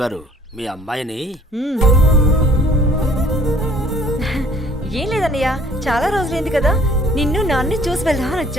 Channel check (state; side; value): normal; both; correlation 0.56